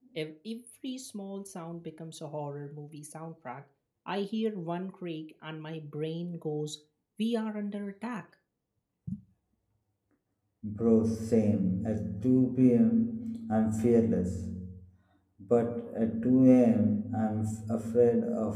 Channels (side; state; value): both; identical; correlation 1.00